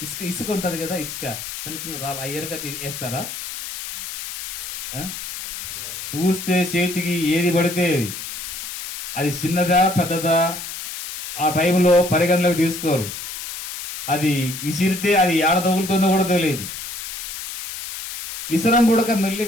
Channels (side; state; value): left; noise; hiss, 8 dB below the sound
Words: ఇసుక ఉంటది కదా, ఇసుక చిన్న చిన్న రాళ్ళు అయ్యరుగా వేస్తారా? చూస్తే చేతికి ఏది పడితే అది చిన్నదా పెద్దదా ఆ టైంలో పరిగణలోకి తీసుకోరు. అది విసిరితే అది ఏడ తగులుతుందో కూడా తెలియదు. విసరం కూడా మెల్లి